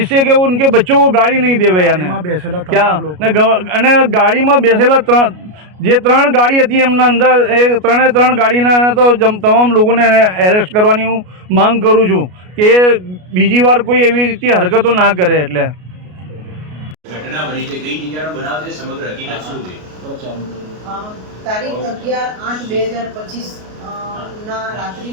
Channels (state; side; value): late; left; 33 ms